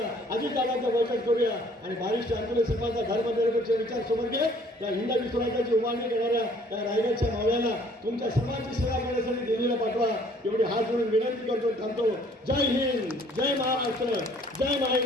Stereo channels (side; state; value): both; normal; correlation 0.58